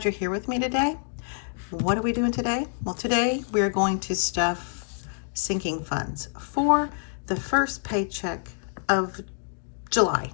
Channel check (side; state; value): right; silent; digital silence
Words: you're here with me today. What are we doing today? Well, today we are going to stuff sinking funds for the first paycheck of July.